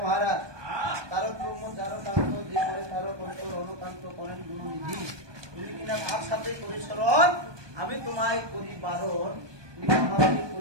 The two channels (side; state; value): left; late; 1.2 ms